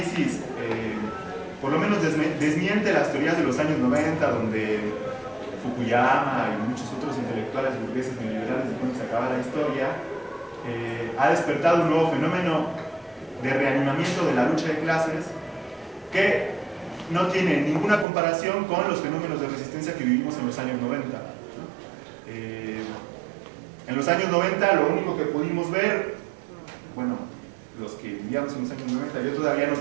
por lo menos desmiente las teorías de los años 90, donde Fukuyama y muchos otros intelectuales burgueses neoliberales dijeron que se acaba la historia, ha despertado un nuevo fenómeno de reanimamiento de la lucha de clases que no tiene ninguna comparación con los fenómenos de resistencia que vivimos en los años 90. En los años 90 lo único que pudimos ver, bueno, los que vivíamos en los años 90, yo todavía no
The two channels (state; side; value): drops out; left; at 18.1 s